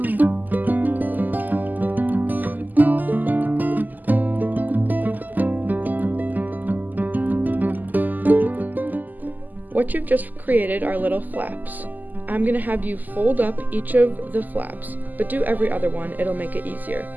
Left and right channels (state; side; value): late; left; 0.084 ms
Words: What you've just created are little flaps. I'm going to have you fold up each of the flaps, but do every other one, it'll make it easier.